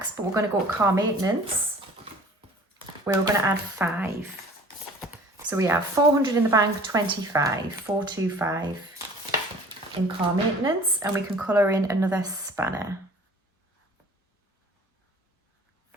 but we're going to go to car maintenance where we're going to add 5. So we have 400 in the bank, 25, 425 in car maintenance, and we can colour in another spanner.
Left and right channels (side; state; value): both; normal; correlation 0.48